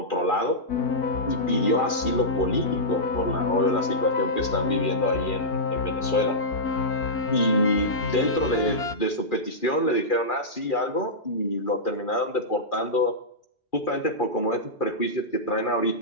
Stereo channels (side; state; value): right; late; 2.4 ms